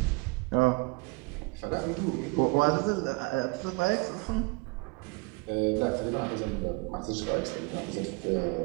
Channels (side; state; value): left; quieter; 27.6 dB